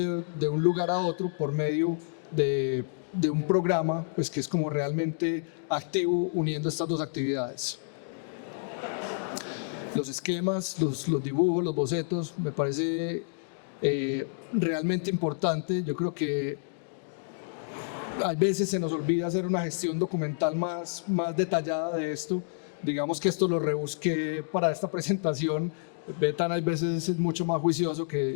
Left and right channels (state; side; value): silent; right; digital silence